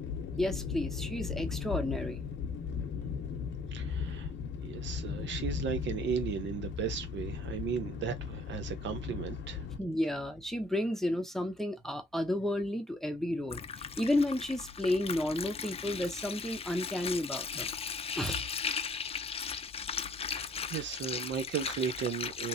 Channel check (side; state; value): both; normal; correlation 0.60